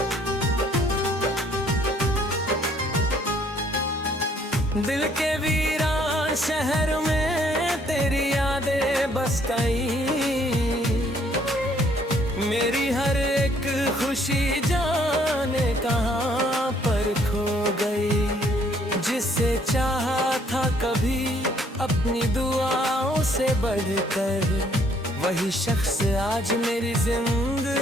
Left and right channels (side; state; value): both; normal; correlation 0.64